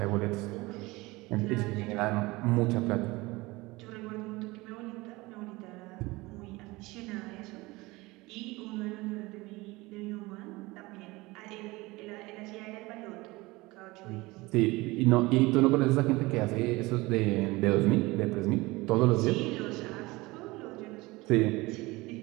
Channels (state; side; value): quieter; left; 21.8 dB